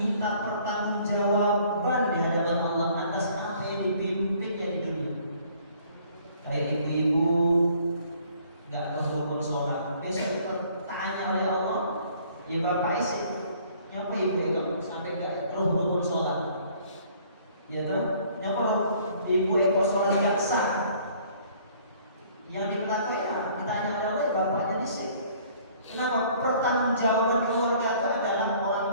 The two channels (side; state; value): both; inverted; correlation -0.57